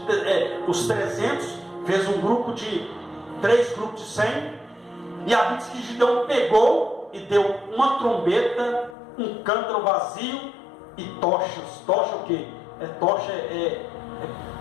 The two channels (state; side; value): drops out; right; at 9.0 s